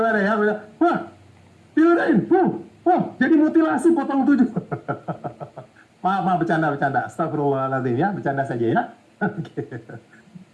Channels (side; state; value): both; identical; correlation 1.00